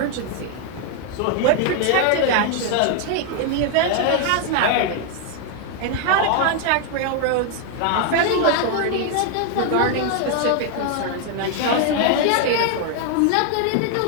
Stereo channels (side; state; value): both; different; correlation 0.00